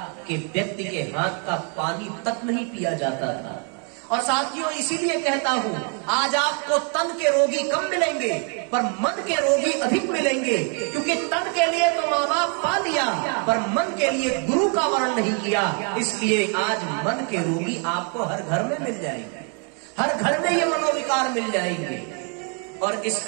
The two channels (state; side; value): quieter; left; 39.8 dB